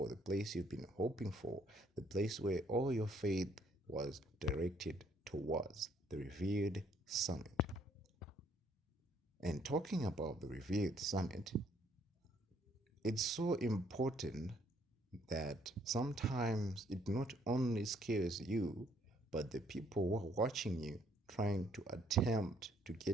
the place you've been hoping for, the place where all your faith was directed towards, the Revered Summit. And talking about the Revered Summit, it's so important that sometimes it not only scares you, but the people who are watching you trying to attempt to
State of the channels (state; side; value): normal; both; correlation 0.66